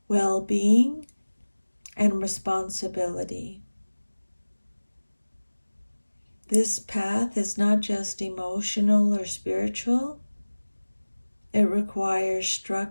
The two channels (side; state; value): both; inverted; correlation -1.00